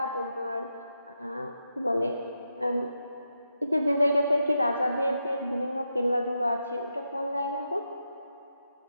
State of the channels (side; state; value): both; inverted; correlation -0.85